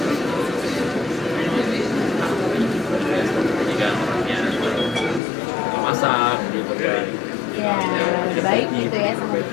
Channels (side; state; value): right; drops out; at 5.2 s